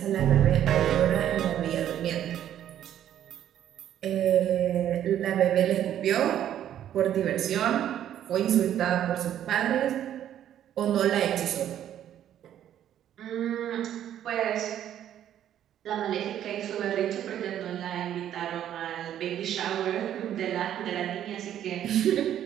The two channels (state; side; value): quieter; left; 10.8 dB